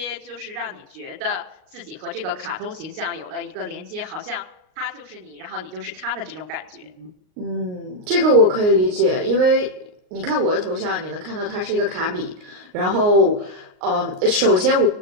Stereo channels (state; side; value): late; left; 38 ms